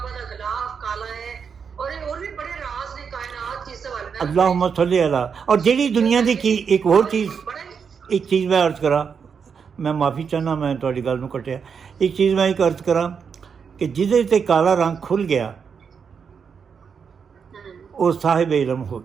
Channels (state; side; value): quieter; left; 6.4 dB